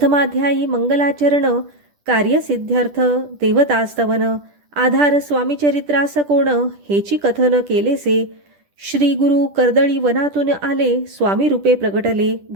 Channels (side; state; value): left; late; 10 ms